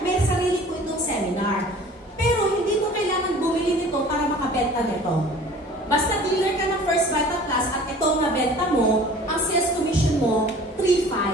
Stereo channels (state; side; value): normal; both; correlation 0.46